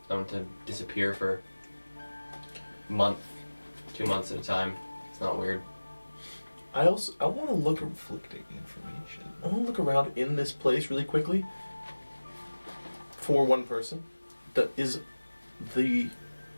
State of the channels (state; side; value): inverted; both; correlation -1.00